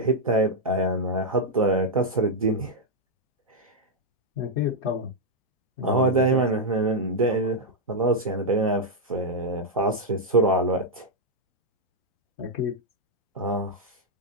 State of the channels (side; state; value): both; normal; correlation -0.02